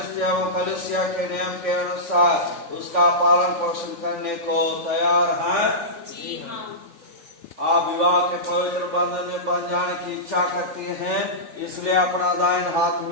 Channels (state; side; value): late; left; 3.5 ms